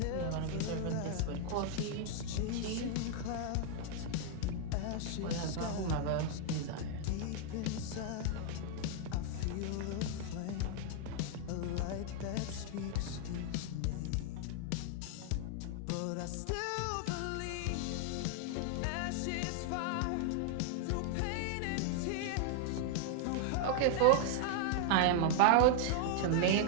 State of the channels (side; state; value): both; different; correlation 0.00